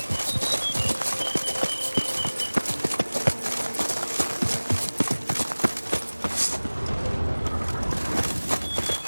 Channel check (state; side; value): inverted; both; correlation -1.00